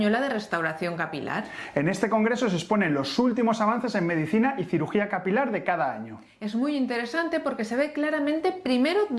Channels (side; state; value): both; identical; correlation 1.00